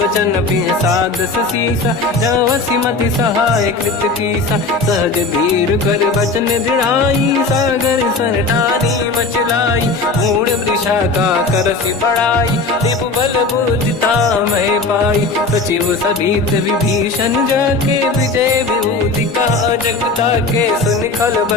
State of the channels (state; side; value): quieter; right; 3.6 dB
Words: बचन पिय सादस सीसा, जवसी मति सहाय कृत कीसा, सहज धीर कर बचन दृढ़ाई, सागर सन ठानी मचलाई, मूढ़ वृषा का करसि बढ़ाई, दिप बल बुद्धि मैं पाई, सचिव सभीत विभीषण जाके, विजय विभूति का जगता के, सुन खल